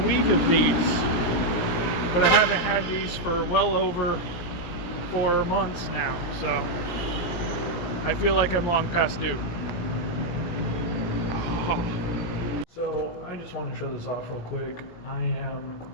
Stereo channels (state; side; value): late; right; 17 ms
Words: of these, but I haven't had these for well over 4 months now, so I feel like I'm long past due. So I just want to show this off real quick. I am